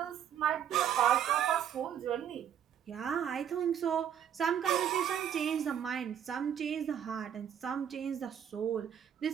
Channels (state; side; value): quieter; left; 9.2 dB